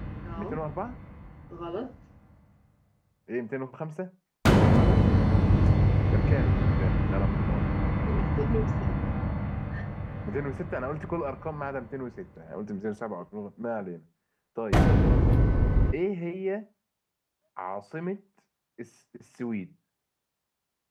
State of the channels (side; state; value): both; identical; correlation 1.00